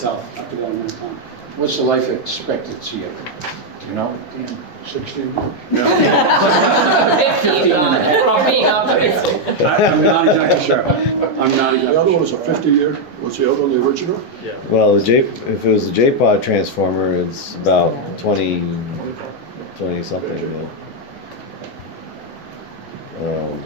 after that amount of time. What's the life expectancy of it? You know, Dan? 16? 15 on it. You're being optimistic. I'm not exactly sure. I'm not exactly sure. The other one was a 50-year, was the other one the original? Well, if it was the J-Pod transformer, it's about 20 something.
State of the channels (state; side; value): normal; both; correlation 0.00